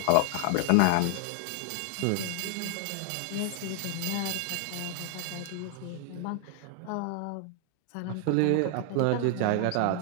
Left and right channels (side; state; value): both; different; correlation 0.00